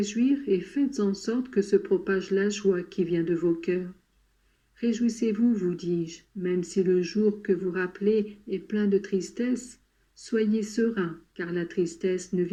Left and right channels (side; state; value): both; identical; correlation 1.00